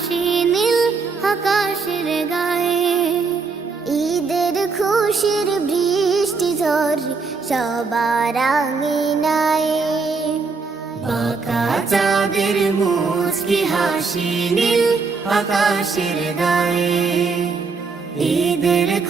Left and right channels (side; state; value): left; quieter; 4.6 dB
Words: নীল আকাশের গায়ে, ঈদের খুশির বৃষ্টি ঝরে সবার আঙিনায়। বাঁকা চাঁদের মুচকি হাসি নীল আকাশের গায়ে, ঈদের